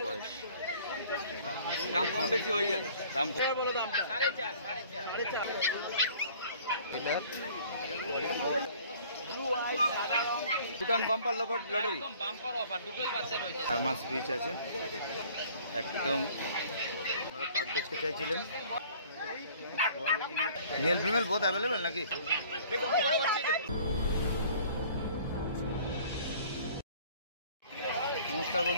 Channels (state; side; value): inverted; both; correlation -0.52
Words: বয়স। দাম কম বেশি হয়ে যাবে। দাম বলো দামটা 4.5 Bhutan bumper lottery bumper offer দুটোই বাচ্চা রয়েছে। 4 মাস পিচ আছে একদম। আপনারা পাক দেখতে চাইছিলেন, মেল ফিমেল বোথ অ্যাভেলেবেল নাকি? নমস্কার